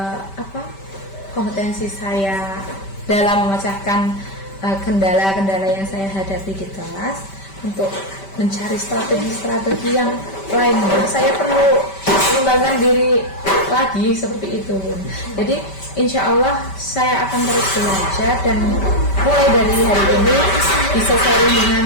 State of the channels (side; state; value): right; late; 5.1 ms